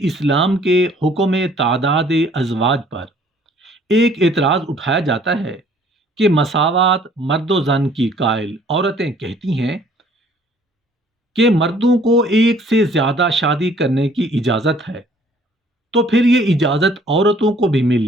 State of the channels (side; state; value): both; normal; correlation 0.58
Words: اسلام کے حکم تعداد ازواج پر ایک اعتراض اٹھایا جاتا ہے کہ مساوات مرد و زن کی قائل عورتیں کہتی ہیں کہ مردوں کو ایک سے زیادہ شادی کرنے کی اجازت ہے، تو پھر یہ اجازت عورتوں کو بھی